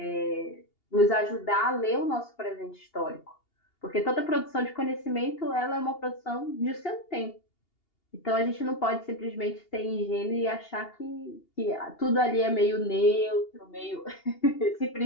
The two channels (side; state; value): right; late; 2.8 ms